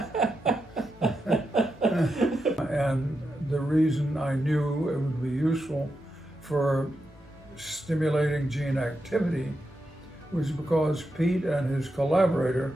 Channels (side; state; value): both; normal; correlation 0.86